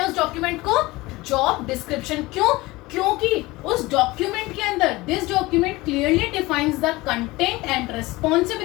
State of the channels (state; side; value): quieter; right; 20.7 dB